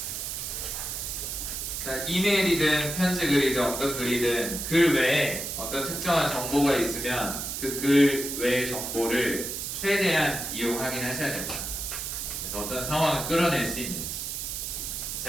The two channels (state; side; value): noise; right; hiss, 4 dB below the sound